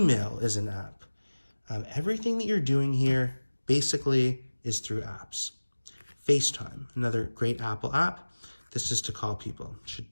is an app. Everything that you're doing here basically is through apps. Facetime, another great Apple app. This is to call people. Should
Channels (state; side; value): inverted; both; correlation -1.00